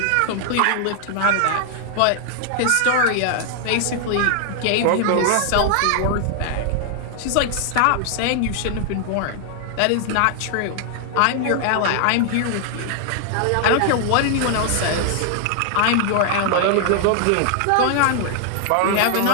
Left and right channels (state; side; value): different; both; correlation 0.00